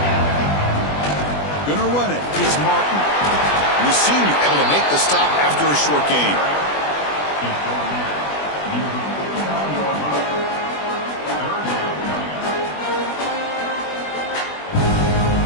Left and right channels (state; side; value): late; right; 20 ms